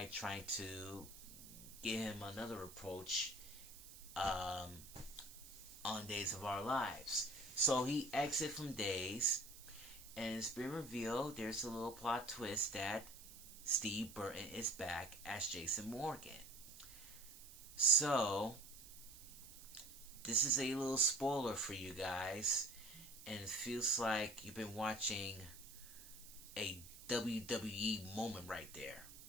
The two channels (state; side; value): noise; right; hiss, 16 dB below the sound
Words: trying to give him another approach on Days of Our Lives. So he exited from Days, and it's been revealed there's a little plot twist that Steve Burton is back as Jason Morgan. So this is a little spoiler for you guys, and it feels like you've been watching a WWE moment right there.